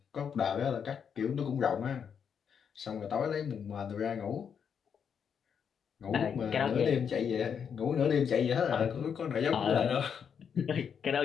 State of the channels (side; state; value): right; quieter; 7.3 dB